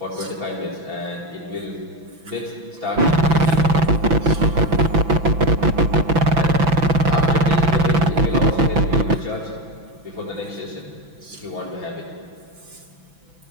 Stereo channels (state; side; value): late; left; 6.0 ms